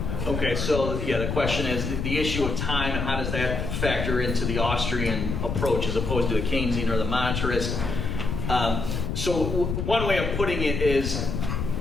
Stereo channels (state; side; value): noise; left; rumble, 3 dB below the sound